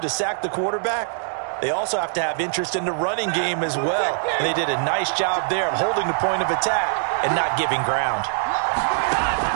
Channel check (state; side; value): silent; left; digital silence